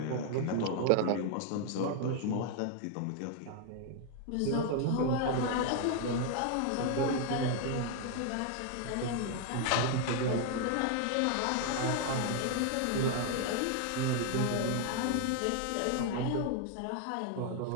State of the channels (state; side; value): different; both; correlation 0.00